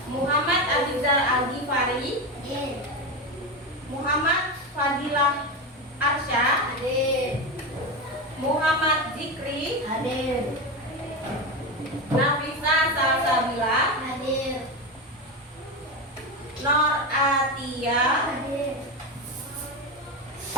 Muhammad Abizar Al-Ghifari, Hadir. Muhammad Fadilah Arsya, Hadir. Muhammad Zikri, Hadir. Nafisa Salsabila, Hadir. Nor Atia, Hadir.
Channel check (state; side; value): normal; both; correlation 0.18